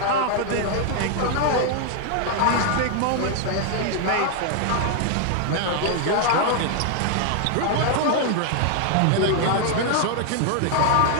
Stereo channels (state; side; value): different; both; correlation 0.00